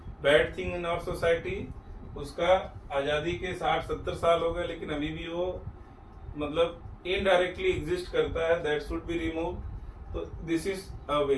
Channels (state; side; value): identical; both; correlation 1.00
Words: bad thing in our society. उसका आजादी के 60-70 साल हो गए, लेकिन अभी भी वो मतलब इनडायरेक्टली एग्जिस्ट करता है। That should be remove. तो दिस इज अ वे,